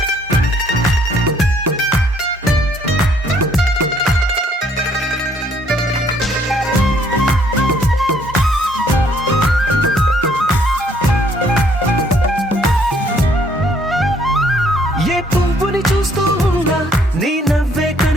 చూస్తూ ఉన్నా నీ నవ్వే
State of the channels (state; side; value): normal; both; correlation 0.64